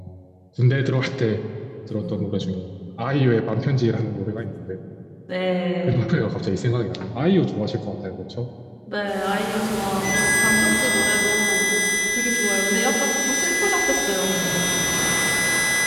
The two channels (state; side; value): identical; both; correlation 1.00